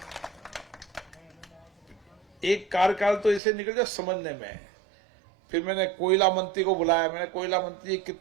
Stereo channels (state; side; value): drops out; left; at 3.4 s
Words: एक कार्यकाल तो इसे निकल जाए समझने में। फिर मैंने कोयला मंत्री को बुलाया, मैंने कोयला मंत्री